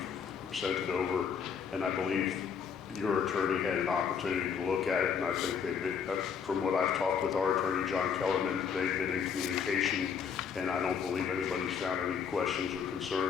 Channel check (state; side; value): quieter; right; 6.9 dB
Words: sent it over, and I believe your attorney had an opportunity to look at it, and I think they've been, from what I've talked with our attorney, John Kellerman, they've been in communication, and I don't believe anybody's found any questions or